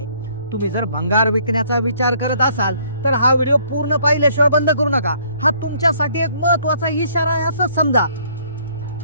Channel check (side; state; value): both; inverted; correlation -0.63